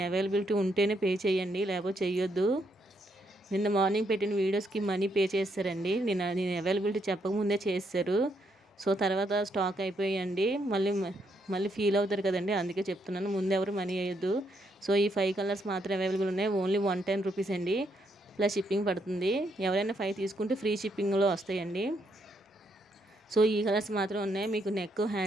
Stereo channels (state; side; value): normal; both; correlation 0.76